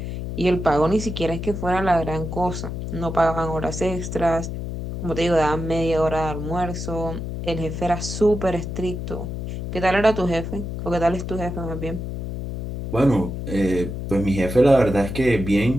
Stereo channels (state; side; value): noise; left; hum, 6 dB below the sound